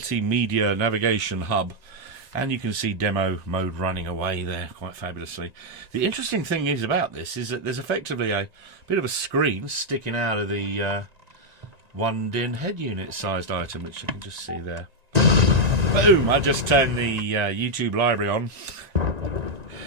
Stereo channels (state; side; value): late; left; 1.9 ms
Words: navigation hub, and you can see demo mode running away there quite fabulously. The interesting thing is about this is that there's effectively a bit of a screen sticking out of the one DIN head unit sized item, which you can just see there. Boom! I just turned the YouTube library on.